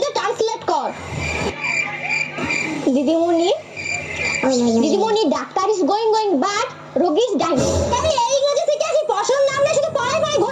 ট্রান্সলেট কর। দিদিমণি ডাক্তার ইজ গোয়িং বাট রোগী ইজ ডাইং। আমি এই ইংরেজি থেকে আসি, পড়াশোনার নাম নিয়ে শুধু পড়াই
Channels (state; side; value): identical; both; correlation 1.00